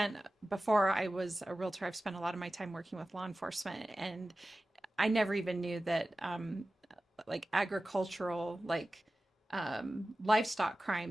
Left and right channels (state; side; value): normal; both; correlation 0.95